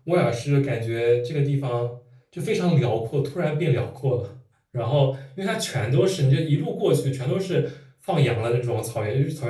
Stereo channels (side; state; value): both; identical; correlation 1.00